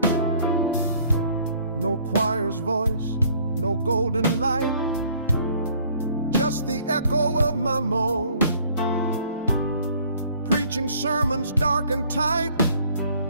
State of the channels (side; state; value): both; inverted; correlation -0.59